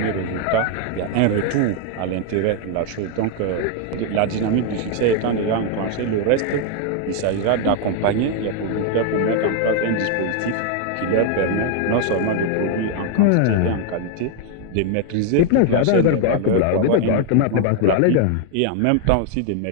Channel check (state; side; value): different; both; correlation 0.00